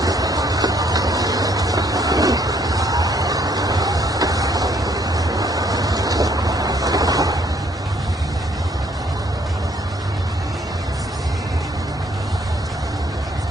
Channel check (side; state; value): both; normal; correlation 0.66